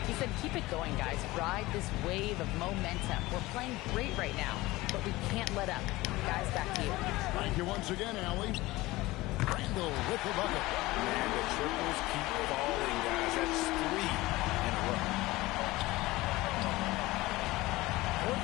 He said, keep it going, guys. Ride this wave of momentum. We're playing great right now, but we can't let up. Guys, back to you. Thank you once again, Allie. Randall with the bucket. And the triples keep falling, guys. That's 3 in a row. For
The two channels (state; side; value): quieter; right; 19.5 dB